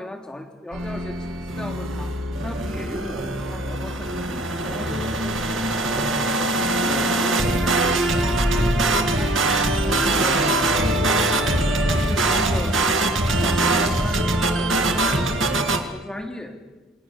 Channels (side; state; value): both; normal; correlation 0.54